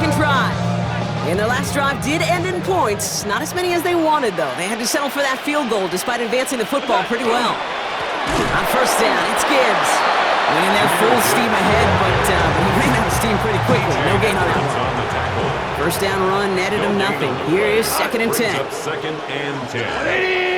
drive. And their last drive did end in points. Not as many as they wanted, though. They had to settle for that field goal despite advancing the football pretty well. On first down, it's Gibbs. Went in there full steam ahead, but he ran out of steam pretty quickly. No gain on that one. First down run netted him nothing. Here is 2nd and 10. Second and 10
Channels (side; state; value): both; identical; correlation 1.00